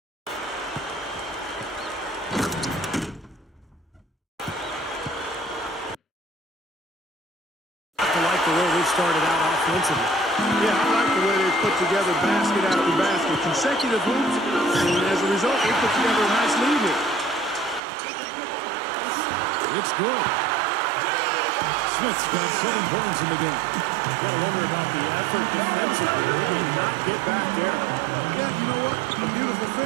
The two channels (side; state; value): left; drops out; at 17.8 s